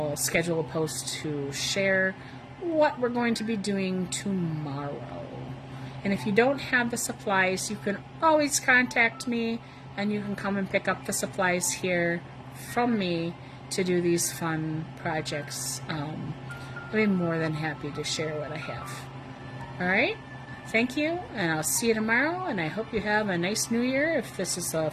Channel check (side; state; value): both; identical; correlation 1.00